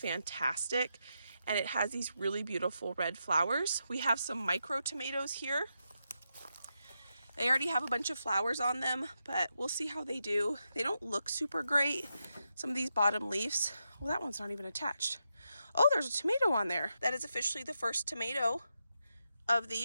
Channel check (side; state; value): both; inverted; correlation -0.85